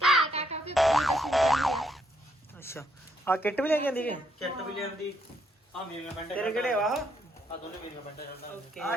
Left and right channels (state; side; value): normal; both; correlation 0.74